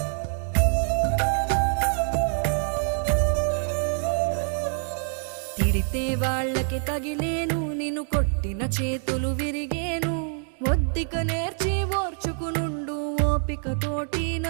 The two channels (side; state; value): left; silent; 61 dB below the other